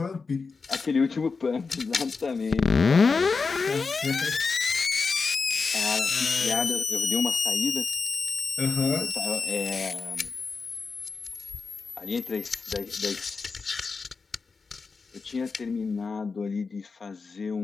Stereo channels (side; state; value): right; quieter; 4.7 dB